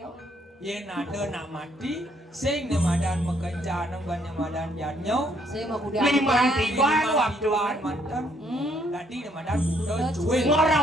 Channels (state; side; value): normal; both; correlation 0.68